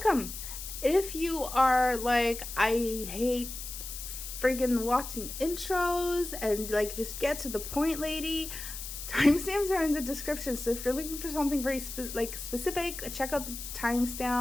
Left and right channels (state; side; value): noise; left; hiss, 9 dB below the sound